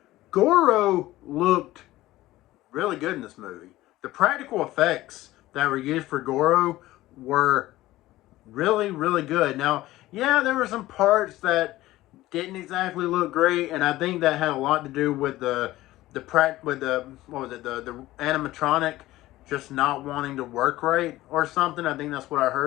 Goro looked really good in this movie. The practical effects that were used for Goro were really, really good. Now, yeah, there were some parts that didn't exactly look great, and I think that had a lot to do with the what was it, the animatronic just not wanting to work right or something. I think that's what I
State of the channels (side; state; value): right; quieter; 16.7 dB